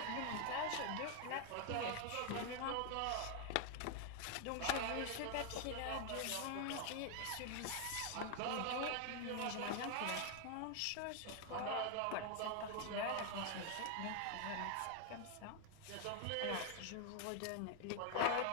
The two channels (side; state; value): both; different; correlation 0.00